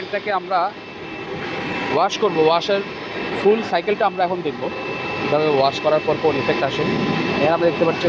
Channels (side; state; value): both; identical; correlation 1.00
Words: আমরা ওয়াশ করব। ওয়াশের ফুল সাইকেলটা আমরা এখন দেখব কীভাবে ওয়াশ করার পর কোন ইফেক্ট আসে। এখানে আমরা দেখতে পাচ্ছি